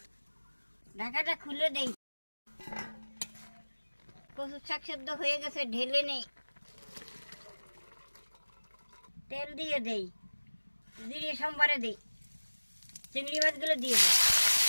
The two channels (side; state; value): both; inverted; correlation -1.00